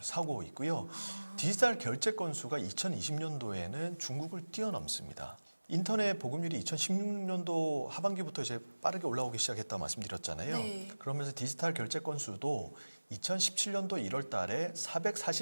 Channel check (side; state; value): both; inverted; correlation -1.00